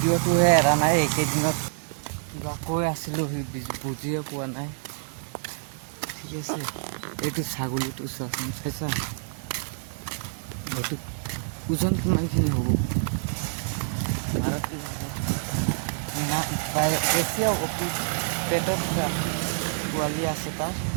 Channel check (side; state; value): left; silent; digital silence